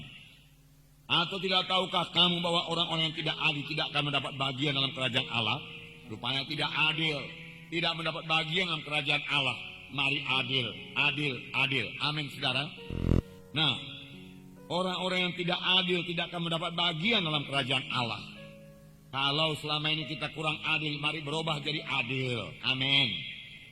Atau tidak tahukah kamu bahwa orang-orang yang tidak adil tidak akan mendapat bagian dalam kerajaan Allah? Rupanya tidak adil, tidak mendapat bagian dalam kerajaan Allah. Mari adil. Amin, saudara. Nah, orang-orang yang tidak adil tidak akan mendapat bagian dalam kerajaan Allah. Kalau selama ini kita kurang adil, mari berubah jadi adil. Amin.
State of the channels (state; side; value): identical; both; correlation 1.00